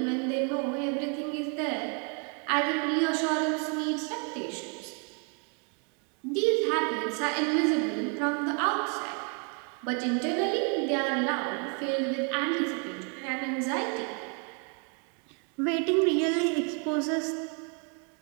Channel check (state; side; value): quieter; left; 37.8 dB